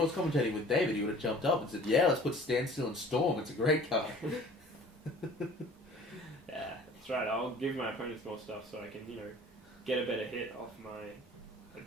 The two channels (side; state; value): both; normal; correlation 0.48